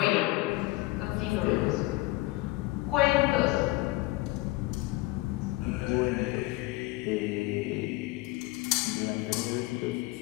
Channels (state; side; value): quieter; right; 20.3 dB